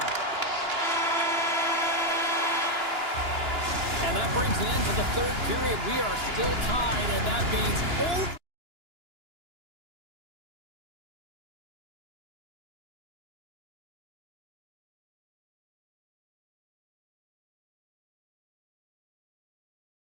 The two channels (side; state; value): left; late; 2.9 ms